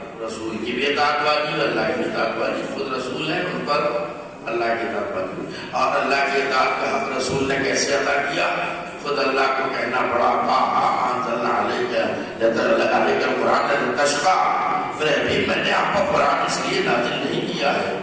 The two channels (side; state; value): both; identical; correlation 1.00